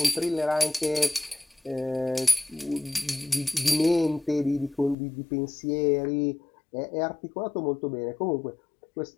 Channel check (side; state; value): right; drops out; at 5.0 s